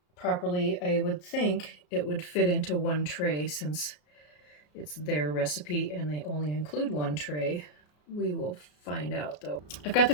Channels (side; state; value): right; late; 33 ms